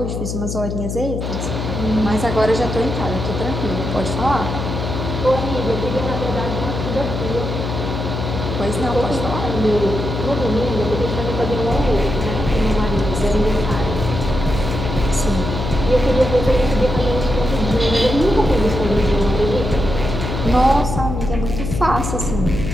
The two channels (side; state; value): left; noise; hum, 4 dB below the sound